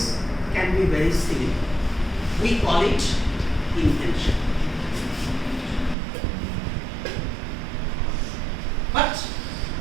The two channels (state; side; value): drops out; left; at 6.0 s